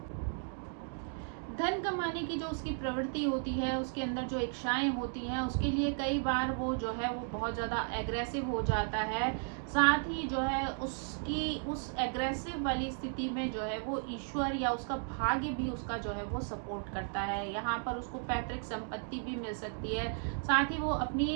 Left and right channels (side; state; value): left; silent; 55 dB below the other